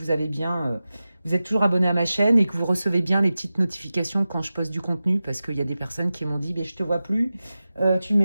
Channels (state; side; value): inverted; both; correlation -0.95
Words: avez bien, vous êtes toujours abonné à ma chaîne et que vous recevez bien les petites notifications quand je poste du contenu, parce qu'il y a des personnes qui m'ont dit, je te vois plus, tu ne